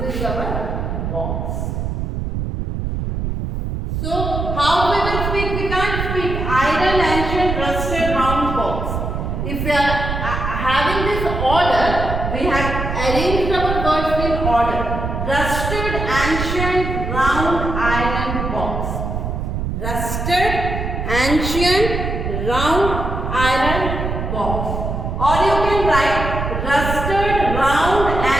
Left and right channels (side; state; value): right; noise; rumble, 3 dB below the sound